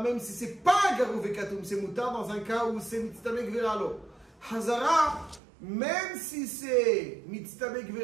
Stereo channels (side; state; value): left; drops out; at 5.4 s